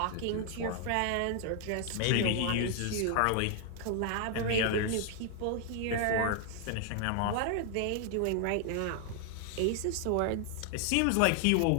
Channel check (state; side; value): different; both; correlation 0.00